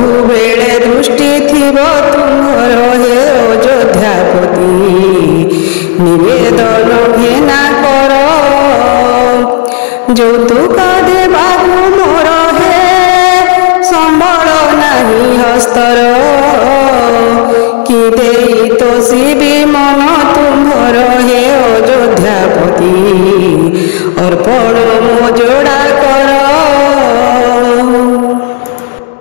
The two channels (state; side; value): silent; right; digital silence